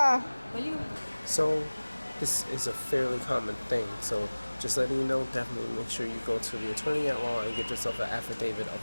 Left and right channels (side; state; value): both; inverted; correlation -1.00